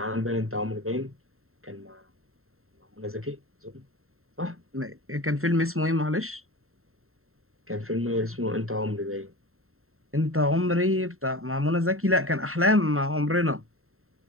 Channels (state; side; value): late; left; 0.62 ms